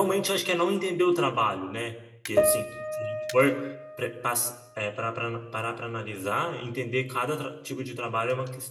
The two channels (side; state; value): both; identical; correlation 1.00